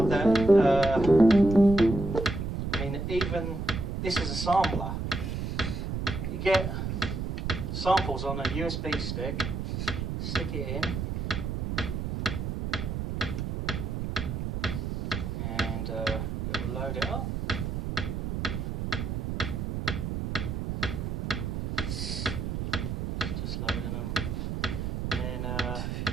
that I mean, even this is a sampler. You get samples on a USB stick, stick it in, and it will load it up. Just loading them. Then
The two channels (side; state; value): right; noise; rumble, 3 dB below the sound